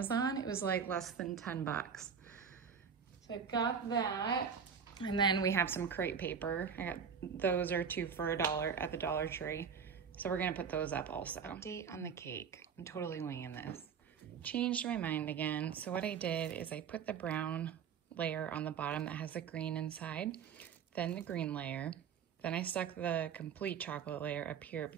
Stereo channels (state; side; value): quieter; left; 6.9 dB